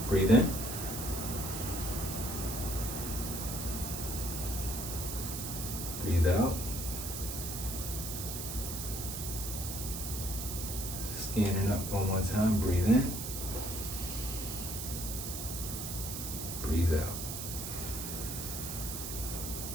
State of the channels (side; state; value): right; noise; hiss, 5 dB below the sound